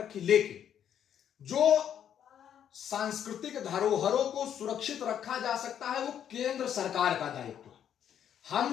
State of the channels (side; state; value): right; quieter; 9.4 dB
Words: लेकिन जो सांस्कृतिक धरोहरों को सुरक्षित रखा जा सकता है वो केंद्र सरकार का दायित्व है। हम